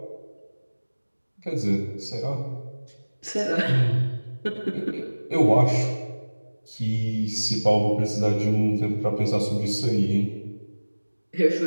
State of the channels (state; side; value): inverted; both; correlation -1.00